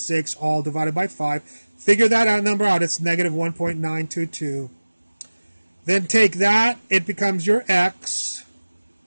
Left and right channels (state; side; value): inverted; both; correlation -1.00